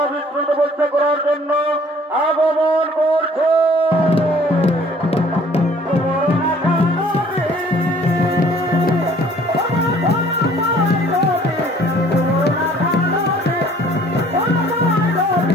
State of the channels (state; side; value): normal; both; correlation 0.55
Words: তপস্যা করার জন্য আগমন করছে।